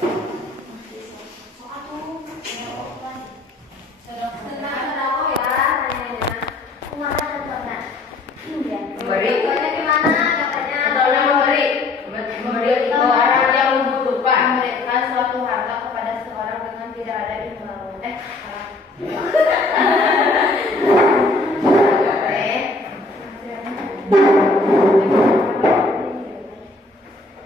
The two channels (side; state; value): right; quieter; 3.2 dB